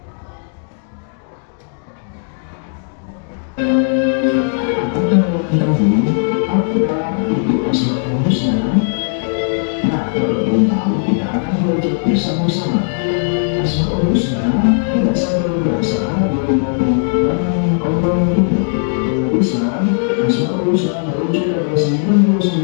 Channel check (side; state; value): right; silent; 68 dB below the other